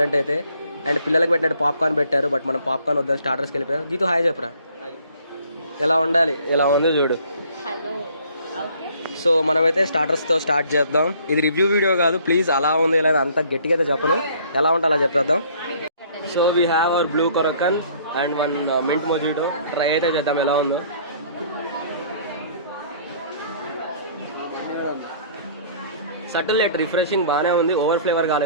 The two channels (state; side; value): inverted; both; correlation -0.57